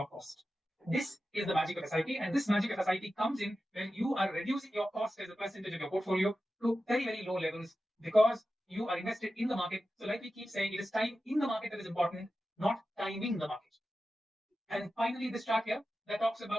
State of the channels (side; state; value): both; normal; correlation 0.93